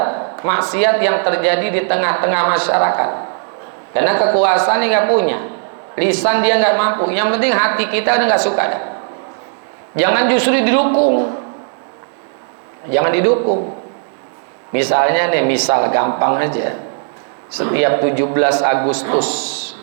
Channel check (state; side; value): silent; left; digital silence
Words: maksiat yang terjadi di tengah-tengah masyarakat. Karena kekuasaan dia nggak punya, lisan dia nggak mampu. Yang penting hati kita udah nggak suka dah. Jangan justru didukung, jangan didukung. Misalnya nih, misal gampang aja, setiap 17 Agustus,